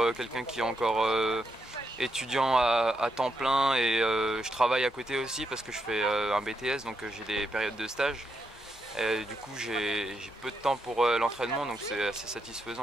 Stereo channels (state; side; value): normal; both; correlation 0.81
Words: quelqu'un qui est encore étudiant à temps plein et je travaille à côté aussi parce que je fais un BTS, donc j'ai des périodes de stage. Et du coup, j'ai peu de temps pour l'entraînement, donc c'est assez